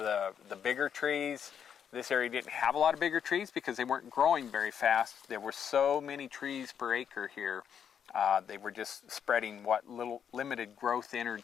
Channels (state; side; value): quieter; right; 8.1 dB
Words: the bigger trees. This area didn't have a lot of bigger trees because they weren't growing very fast. There were so many trees per acre here. They were just spreading what little limited growth